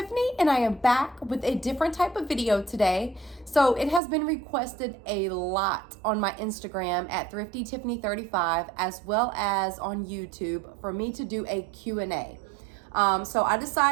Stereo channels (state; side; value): drops out; left; at 4.0 s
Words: and I am back with a different type of video today. So it has been requested a lot on my Instagram at Thrifty Tiffany 35, as well as on YouTube, for me to do a Q&A. So I